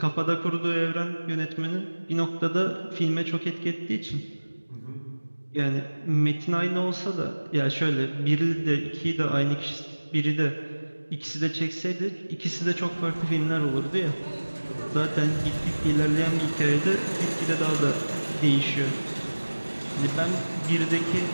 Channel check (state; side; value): inverted; both; correlation -1.00